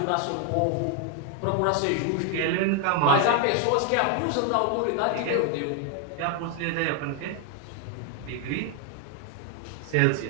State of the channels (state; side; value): different; both; correlation 0.00